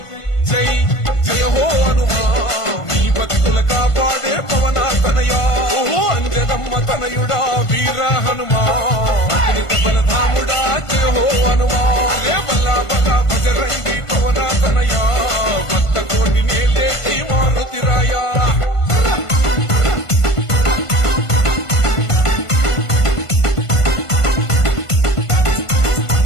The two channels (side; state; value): right; late; 1.5 ms